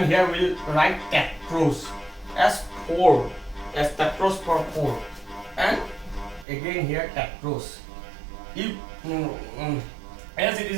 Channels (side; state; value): left; drops out; at 6.5 s